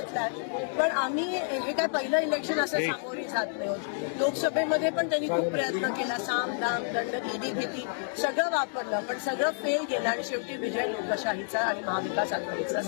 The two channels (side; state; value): right; silent; digital silence